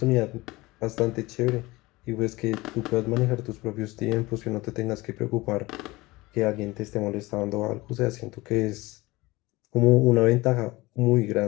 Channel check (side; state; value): right; quieter; 21.1 dB